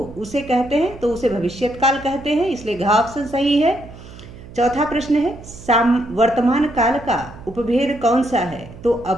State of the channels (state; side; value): noise; right; hum, 17 dB below the sound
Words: उसे कहते हैं, तो उसे भविष्यत काल कहते हैं, इसलिए घ ऑप्शन सही है। चौथा प्रश्न है वर्तमान काल का उपभेद कौन सा है? तो